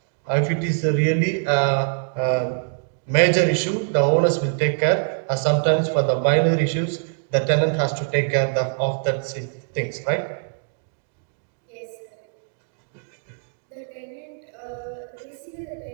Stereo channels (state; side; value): silent; left; digital silence